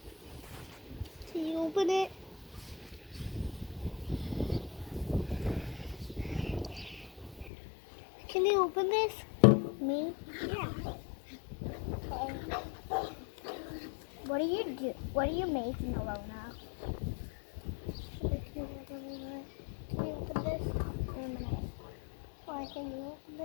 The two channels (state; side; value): drops out; right; at 7.5 s